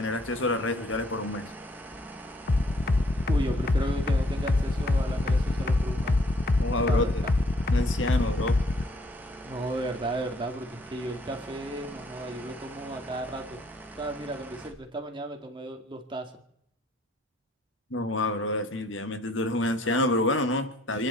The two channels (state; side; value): normal; both; correlation 0.63